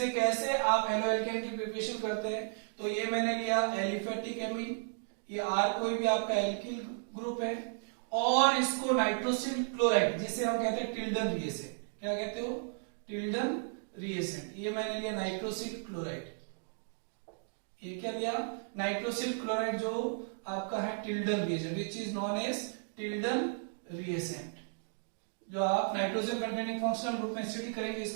कैसे आप हेलो एल्केन की प्रिपरेशन करते हैं। तो ये मैंने लिया एलिफेटिक एमीन, ये R कोई भी आपका एल्किल ग्रुप है, और इसको नाइट्रोसिल क्लोराइड जिसे हम कहते हैं टिल्डन रिएसेंट, क्या कहते हो, टिल्डन रिएसेंट। ये मैंने लिया नाइट्रोसिल क्लोराइड, ये क्या लिया, नाइट्रोसिल क्लोराइड जो आपका है Tilden reagent, which is known as Tilden reagent, जो आप नाइट्रोजन कंटेनिंग फंक्शनल ग्रुप में स्टडी करेंगे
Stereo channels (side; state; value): left; silent; digital silence